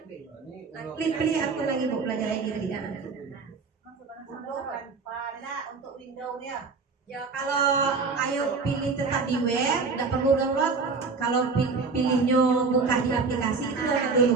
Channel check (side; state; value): left; quieter; 4.5 dB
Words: Pilih akun lagi Bu, belajar ID tadi. Untuk Windows ya. Ya, kalau ayo pilih tetap di web, tidak perlu download. Kalau pilihnya buka di aplikasi itu download